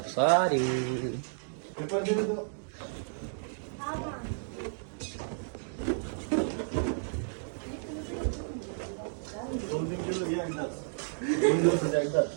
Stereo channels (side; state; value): left; silent; digital silence